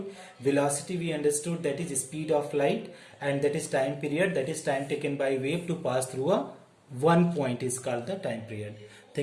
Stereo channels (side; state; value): both; identical; correlation 1.00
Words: Velocity we understood, that is speed of light, and that is time period, that is time taken by wave to pass through a one point is called the time period.